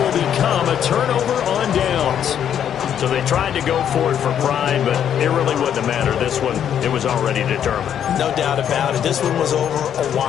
become a turnover on downs. So they tried to go for it for pride, but it really wouldn't have mattered. This one, it was already determined. No doubt about it. This one was over a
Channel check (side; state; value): right; quieter; 9.3 dB